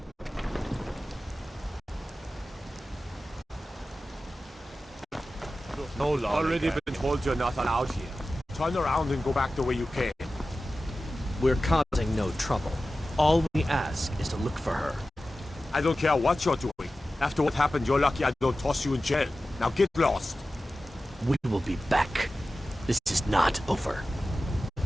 No longer. Already been told you're not allowed here. Turn around and go back the way you came. We're causing no trouble. All we ask is to look for her. I don't care what you're doing. After what happened, you're lucky I don't toss you in jail. Now get lost. We will be back. This is not over.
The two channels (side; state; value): both; normal; correlation 0.95